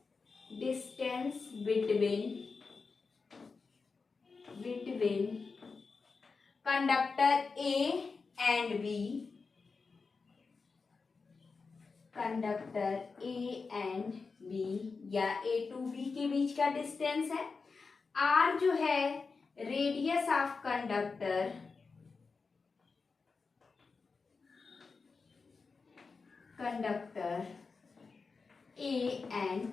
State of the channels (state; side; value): quieter; right; 4.6 dB